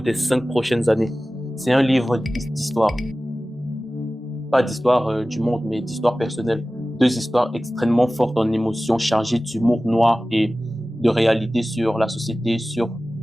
des 5 prochaines années. C'est un livre d'histoire. Pas d'histoire du monde, mais d'histoire personnelle. 2 histoires extrêmement fortes en émotions, chargées d'humour noir et de réalité sur la société, sur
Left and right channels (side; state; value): both; normal; correlation 0.96